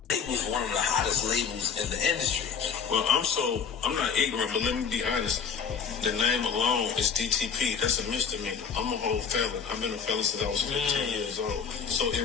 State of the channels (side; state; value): right; quieter; 6.6 dB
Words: It was one of the hottest labels in the industry. Well, I'm not ignorant, but let me be honest. The name alone is DTP. That's a misdemeanor. I'm a whole felon. I've been a felon since I was 15 years old. So